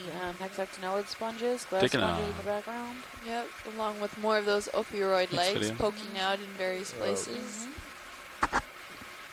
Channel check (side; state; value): both; identical; correlation 1.00